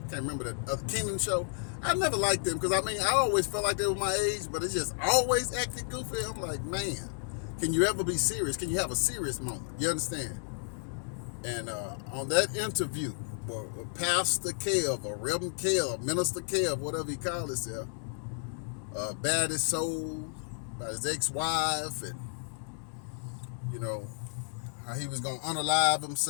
can't remember that Kingdom show. I never liked them because I always felt like they were my age, but it's just always acting goofy. I'm like, man, can you ever be serious? Can you have a serious moment? You understand? And on that interview, Pastor Kev, or Reverend Kev, Minister Kev, whatever he called himself, bared his soul about his ex-wife, and how he was gonna unalive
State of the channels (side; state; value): right; silent; digital silence